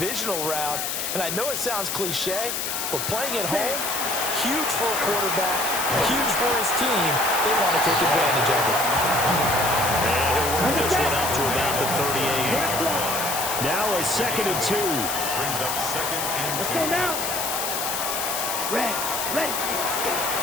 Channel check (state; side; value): noise; left; hiss, 2 dB below the sound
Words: round. And I know it sounds cliche, but playing at home, huge for a quarterback, huge for his team. They want to take advantage of it. And he'll work this one up to about the 38. Now a 2nd and 2. Brings up 2nd and 2. Let's go now. Red.